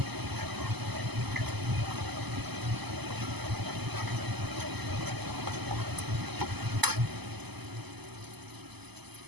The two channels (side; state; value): left; late; 0.99 ms